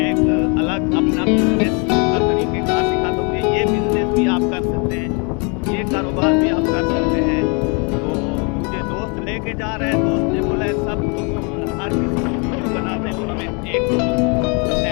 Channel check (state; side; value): quieter; right; 33.7 dB